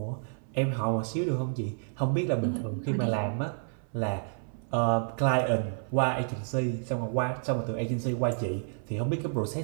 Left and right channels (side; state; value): left; silent; 58 dB below the other